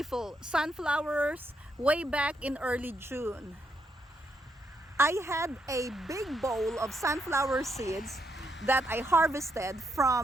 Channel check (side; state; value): both; normal; correlation 0.79